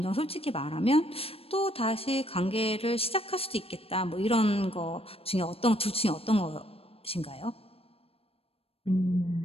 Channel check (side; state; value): right; late; 0.28 ms